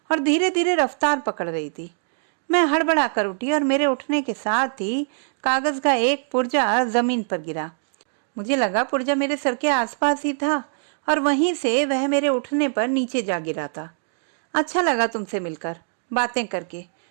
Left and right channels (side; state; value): left; silent; digital silence